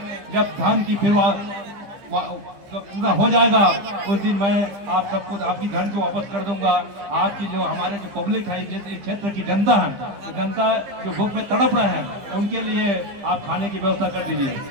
जब धान की पूरा हो जाएगा, उस दिन मैं आप सबको आपकी धन को वापस कर दूंगा। आपकी जो हमारे जो पब्लिक है, इस क्षेत्र की जनता है, तो जनता जो भूख में तड़प रहे हैं, उनके लिए आप खाने की व्यवस्था कर दीजिए।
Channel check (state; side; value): late; left; 15 ms